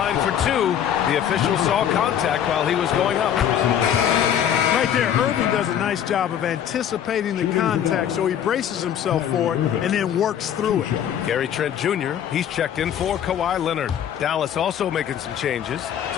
for 2. The official saw contact while he was going up. Right there, Irving does a nice job of anticipating the contact, so he braces himself for it and then works through it. Gary Trent Jr., he's checked in for Kawhi Leonard. Dallas also making some changes.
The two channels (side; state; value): right; quieter; 9.6 dB